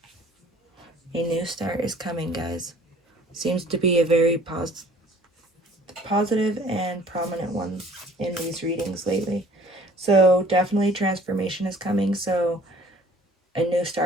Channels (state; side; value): normal; both; correlation 0.53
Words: A new start is coming, guys. Seems to be a very positive and prominent one in these readings lately. So definitely transformation is coming. So a new